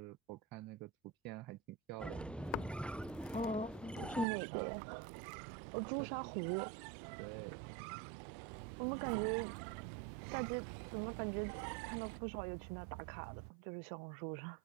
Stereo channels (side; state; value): left; drops out; at 4.2 s